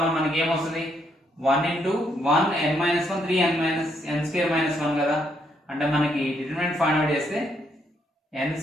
1 మనకి ఏమొస్తుంది? 1 into 1 n minus 1 3 n minus n square minus 1 కదా. అంటే మనకి డిటర్మినెంట్ ఫైండ్ అవుట్ చేస్తే n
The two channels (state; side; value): normal; both; correlation 0.74